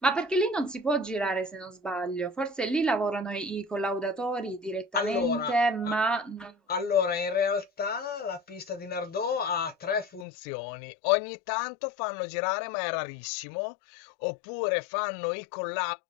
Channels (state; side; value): drops out; right; at 10.2 s